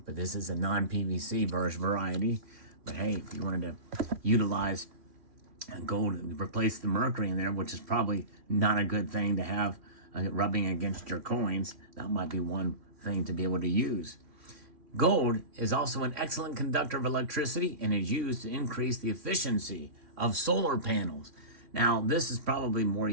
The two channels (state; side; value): late; left; 3.0 ms